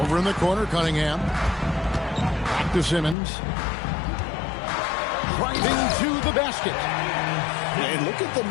in the corner, Cunningham. Back to Simmons. Driving to the basket. And look at the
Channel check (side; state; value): right; drops out; at 3.2 s